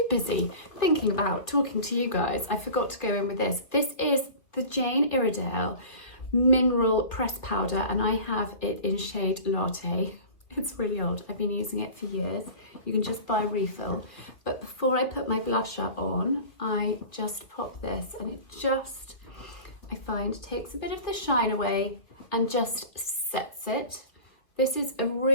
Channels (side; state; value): right; late; 2.6 ms